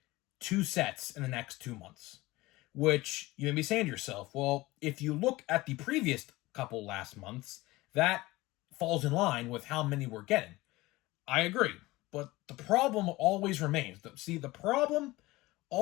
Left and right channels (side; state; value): right; quieter; 19.9 dB